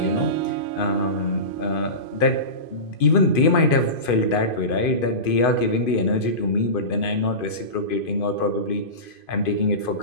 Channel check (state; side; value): late; right; 2.5 ms